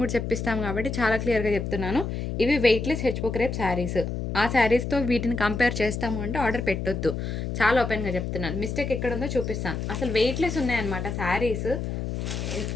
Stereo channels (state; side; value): noise; left; hum, 4 dB below the sound